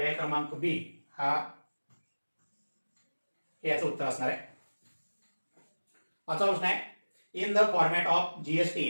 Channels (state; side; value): inverted; both; correlation -1.00